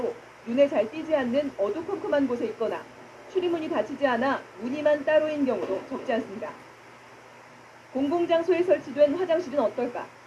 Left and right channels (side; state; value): both; identical; correlation 1.00